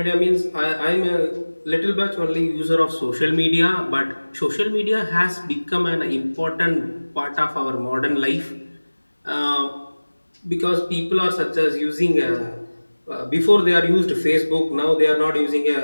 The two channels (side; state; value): both; inverted; correlation -1.00